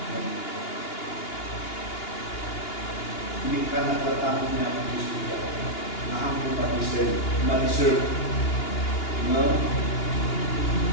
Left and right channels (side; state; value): right; late; 2.8 ms